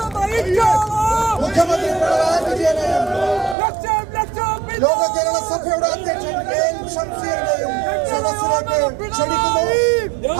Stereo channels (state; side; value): drops out; left; at 3.6 s